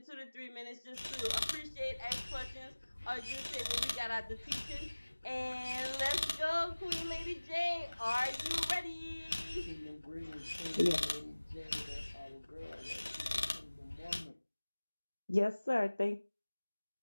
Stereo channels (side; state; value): both; inverted; correlation -1.00